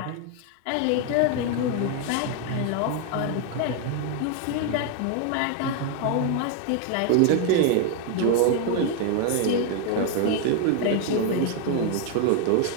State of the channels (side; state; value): both; different; correlation 0.00